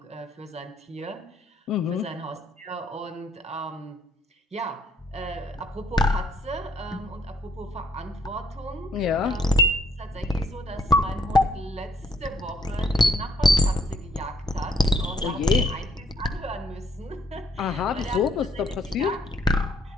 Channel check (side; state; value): both; normal; correlation 0.67